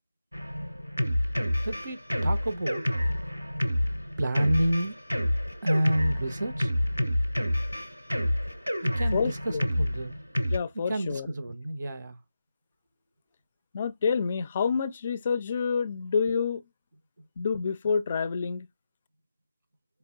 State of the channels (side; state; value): both; inverted; correlation -0.92